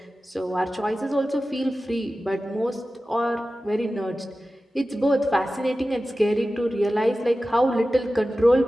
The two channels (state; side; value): normal; both; correlation 0.95